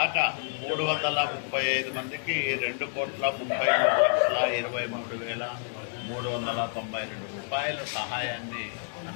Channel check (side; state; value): right; silent; digital silence